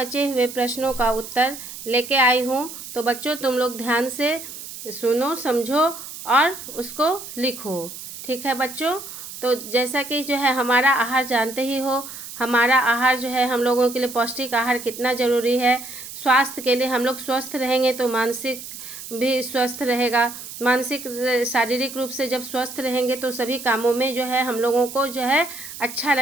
हुए प्रश्नों का उत्तर लेके आई हूँ। तो बच्चों तुम लोग ध्यान से सुनो, समझो और उसको लिखो। ठीक है बच्चों। तो जैसा कि जो है हमारा आहार जानते ही हो, हमारा आहार जो है हम लोगों के लिए पौष्टिक आहार कितना ज़रूरी है। स्वास्थ्य के लिए हम लोग स्वस्थ रहेंगे तो मानसिक भी स्वस्थ रहेगा। मानसिक शारीरिक रूप से जब स्वस्थ रहेंगे तो सभी कामों में जो है हम लोगों को जो है अच्छा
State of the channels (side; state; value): right; noise; hiss, 12 dB below the sound